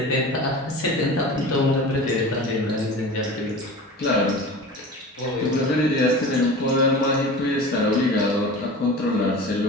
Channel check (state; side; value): normal; both; correlation 0.35